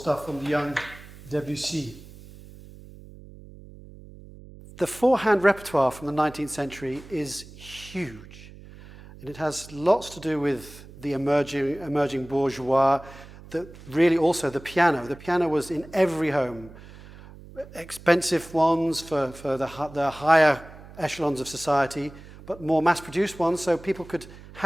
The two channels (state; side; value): noise; right; hum, 19 dB below the sound